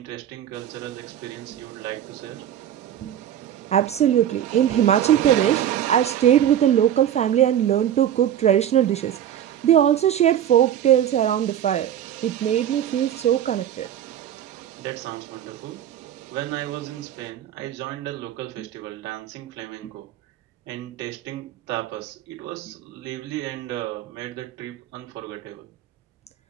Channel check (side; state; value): left; quieter; 10.6 dB